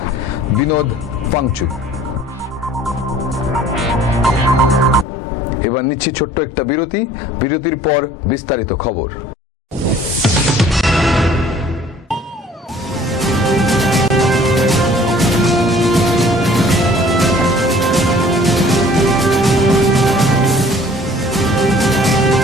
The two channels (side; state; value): both; normal; correlation 0.52